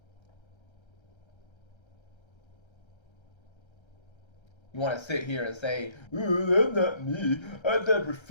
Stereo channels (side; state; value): right; late; 1.3 ms